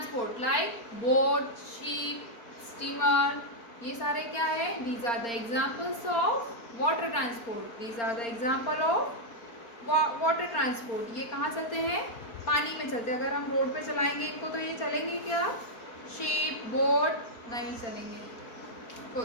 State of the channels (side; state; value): right; late; 4.3 ms